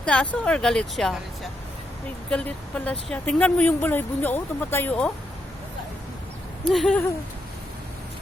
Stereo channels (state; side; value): normal; both; correlation 0.80